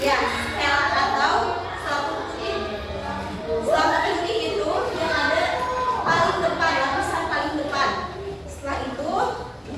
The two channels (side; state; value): both; identical; correlation 1.00